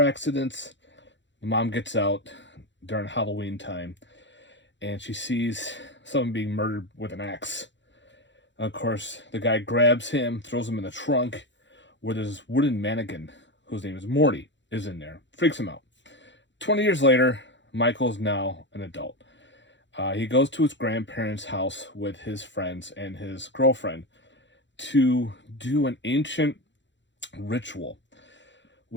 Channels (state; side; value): late; right; 0.53 ms